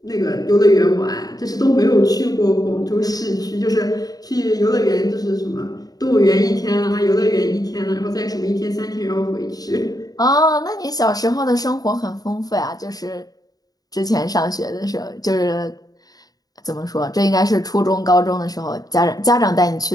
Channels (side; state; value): right; late; 0.18 ms